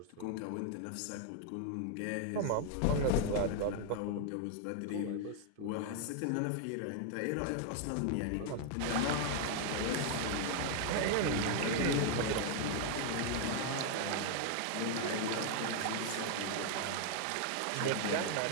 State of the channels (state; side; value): different; both; correlation 0.00